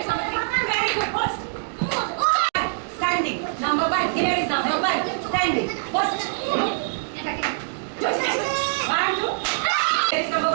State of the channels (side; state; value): left; silent; digital silence